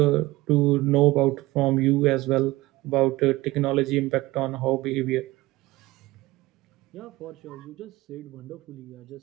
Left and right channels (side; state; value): left; quieter; 19.4 dB